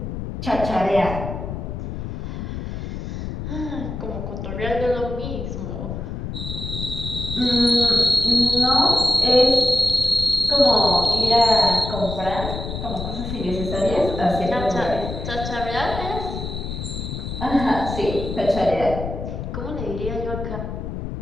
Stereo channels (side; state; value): left; noise; rumble, 6 dB below the sound